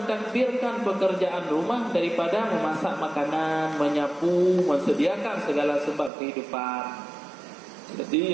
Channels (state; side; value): drops out; left; at 6.1 s